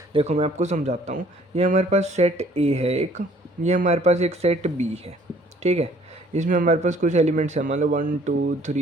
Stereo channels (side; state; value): both; normal; correlation 0.58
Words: देखो मैं आपको समझाता हूँ। ये हमारे पास सेट ए है एक, ये हमारे पास एक सेट बी है। ठीक है, इसमें हमारे पास कुछ एलिमेंट्स हैं, मान लो 1 2